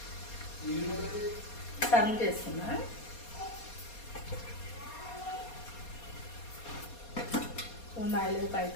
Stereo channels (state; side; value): late; right; 4.2 ms